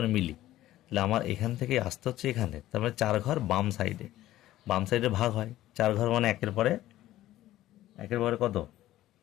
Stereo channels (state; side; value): quieter; right; 14.6 dB